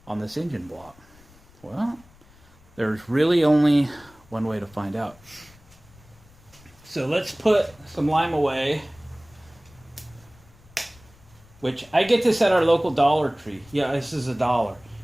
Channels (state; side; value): noise; left; rumble, 26 dB below the sound